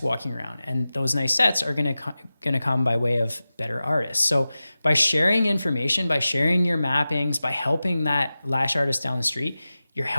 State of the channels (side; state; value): both; inverted; correlation -0.95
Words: walking around, and those nice sets are going to come by way of better artists. So by sharing information, by sharing your mappings, by helping that lash artist down the street, you're